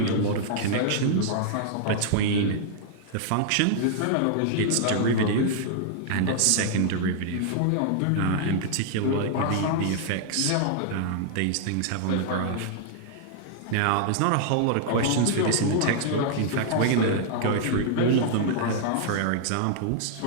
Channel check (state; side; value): different; both; correlation -0.01